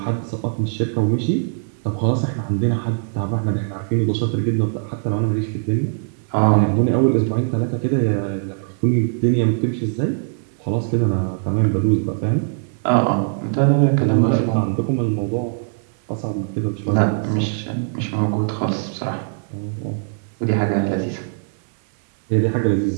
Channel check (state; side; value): silent; left; digital silence